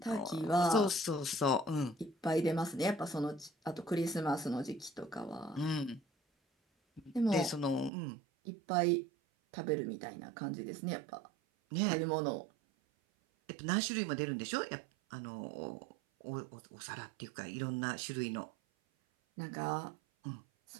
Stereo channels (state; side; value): drops out; left; at 7.9 s